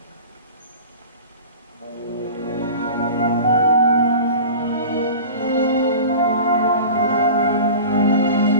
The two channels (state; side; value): inverted; both; correlation -0.36